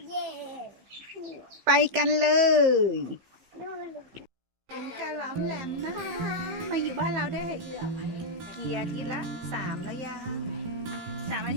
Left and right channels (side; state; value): left; late; 15 ms